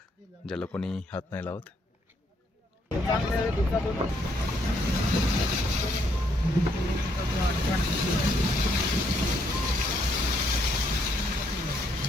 ज्याला कोणी हात नाही लावत.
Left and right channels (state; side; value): normal; both; correlation 0.72